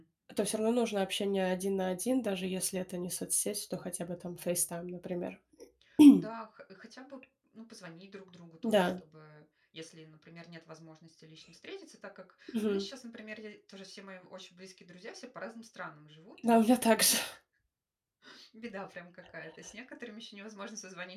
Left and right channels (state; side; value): identical; both; correlation 1.00